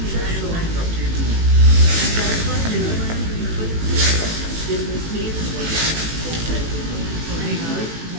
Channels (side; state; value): left; late; 18 ms